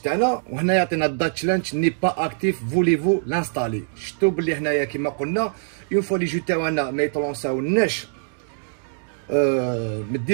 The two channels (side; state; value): left; silent; digital silence